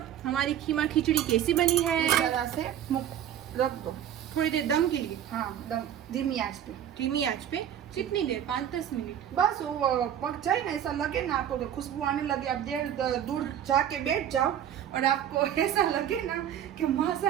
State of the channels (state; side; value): quieter; left; 10.1 dB